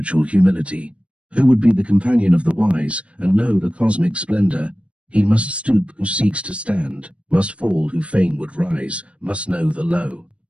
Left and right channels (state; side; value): late; left; 0.061 ms